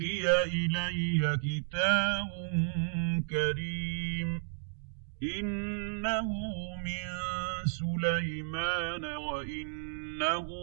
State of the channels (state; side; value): silent; left; digital silence